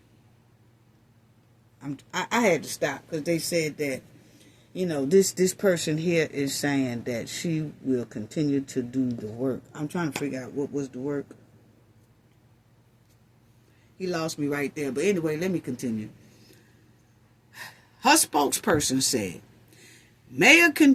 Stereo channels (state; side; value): identical; both; correlation 1.00